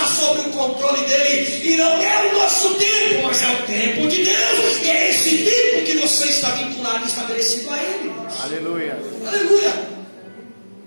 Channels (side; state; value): both; inverted; correlation -1.00